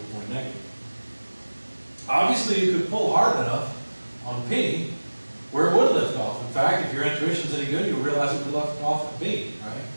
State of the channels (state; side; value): inverted; both; correlation -1.00